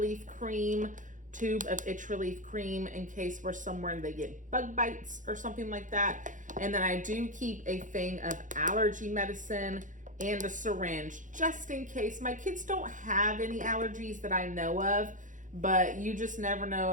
cream, tube of itch relief cream in case we're somewhere and they get bug bites or something like that. And then I do keep a thing of allergy medicine and a syringe just in case. My kids don't have any allergies that I know of, but you just never know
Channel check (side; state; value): left; late; 0.37 ms